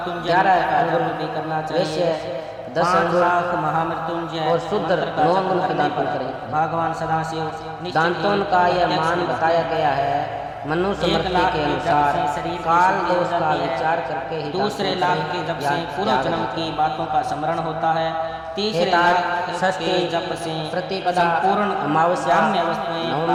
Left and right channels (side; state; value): both; identical; correlation 1.00